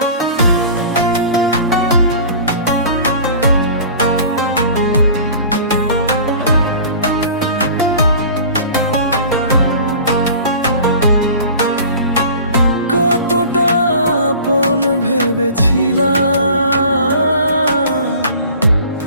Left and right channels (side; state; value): both; inverted; correlation -0.42